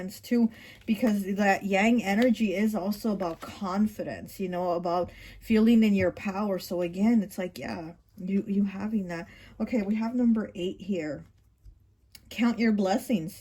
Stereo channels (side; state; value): both; identical; correlation 1.00